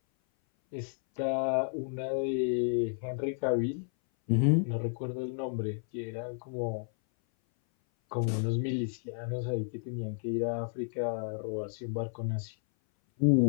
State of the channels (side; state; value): right; silent; 57 dB below the other